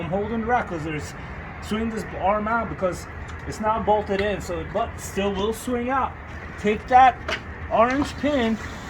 I'm holding the rack, because swing this arm out because it's not bolted in. So but still will swing out. Take that orange pin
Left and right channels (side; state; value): both; identical; correlation 1.00